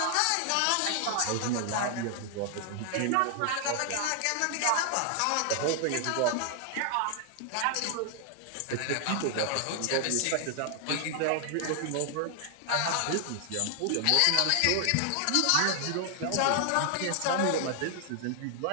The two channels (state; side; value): different; both; correlation 0.00